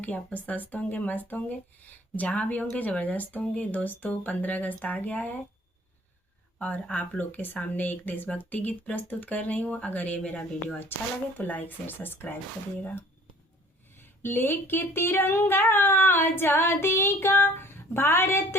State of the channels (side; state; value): both; normal; correlation 0.52